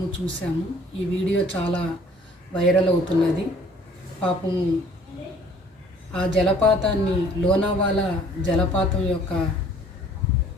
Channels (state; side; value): normal; both; correlation 0.55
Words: చూసాము. ఈ వీడియో చాలా వైరల్ అవుతున్నది. పాపం ఆ జలపాతాన్ని, లోనావాలా జలపాతం యొక్క